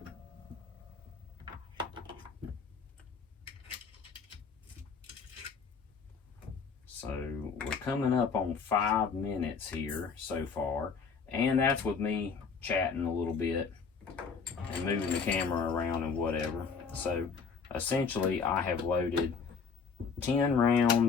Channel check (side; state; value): right; quieter; 5.6 dB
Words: So we're coming up on 5 minutes here so far, and that's with me chatting a little bit and moving the camera around and whatever. So essentially I have loaded 10